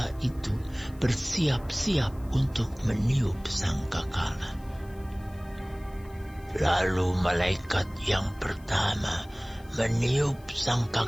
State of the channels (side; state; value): left; noise; hiss, 27 dB below the sound